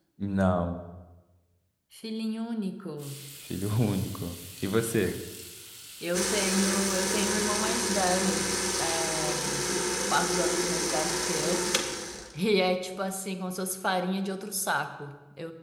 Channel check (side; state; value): both; identical; correlation 1.00